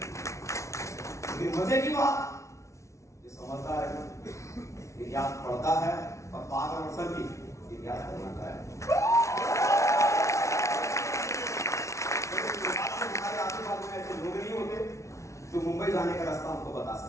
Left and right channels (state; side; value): late; right; 0.14 ms